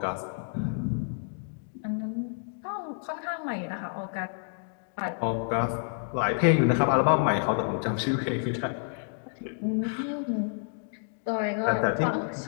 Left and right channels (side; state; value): right; silent; digital silence